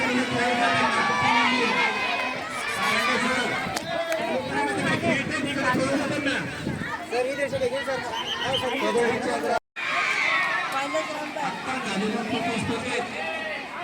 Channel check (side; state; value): both; identical; correlation 1.00